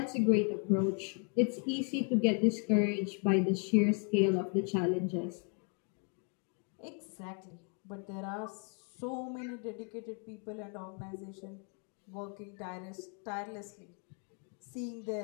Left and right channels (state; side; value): quieter; right; 38.8 dB